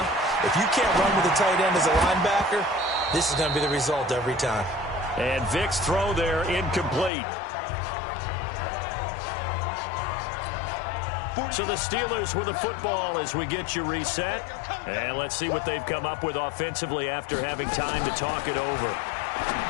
If you can't run with a tight end as a linebacker, this is going to be the result every time. And Vic's throw there incomplete. So the Steelers with the football as we get you reset. And let's see what they've come up with offensively after having time to talk it over.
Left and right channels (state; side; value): drops out; right; at 7.1 s